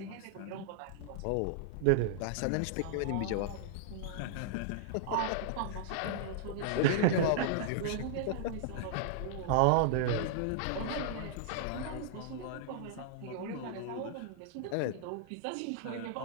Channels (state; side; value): different; both; correlation -0.01